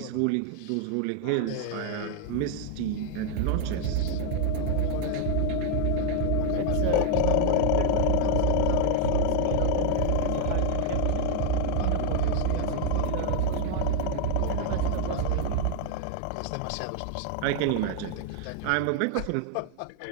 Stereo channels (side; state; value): both; different; correlation 0.00